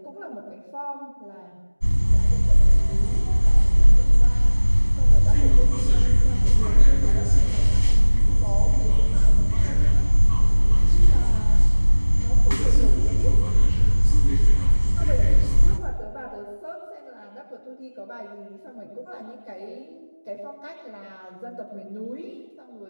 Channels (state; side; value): inverted; both; correlation -1.00